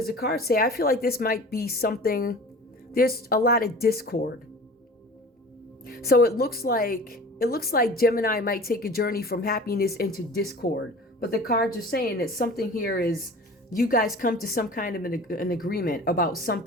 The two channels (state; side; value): normal; both; correlation 0.40